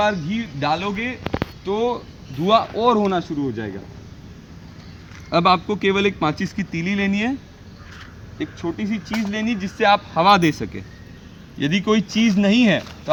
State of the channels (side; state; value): both; identical; correlation 1.00